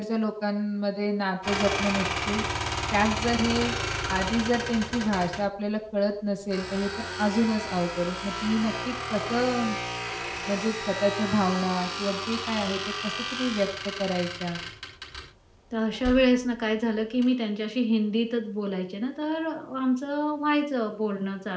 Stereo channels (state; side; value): identical; both; correlation 1.00